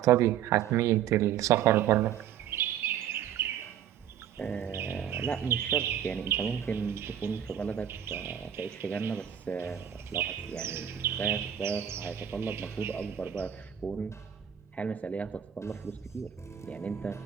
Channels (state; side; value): quieter; left; 9.7 dB